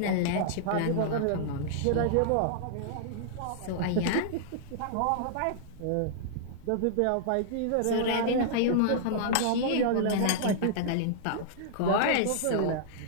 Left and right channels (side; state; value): both; different; correlation -0.02